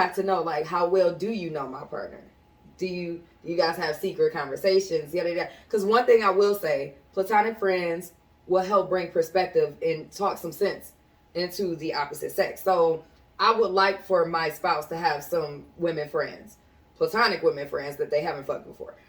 to know, like, how well do you know my partner? Do you guys have secret conversations? Because one thing I will say, platonic friends will help bring perspective and talk some sense into the opposite sex. So I would like for my spouse to have some women friends, platonic women friends that they haven't fucked before.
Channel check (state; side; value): identical; both; correlation 1.00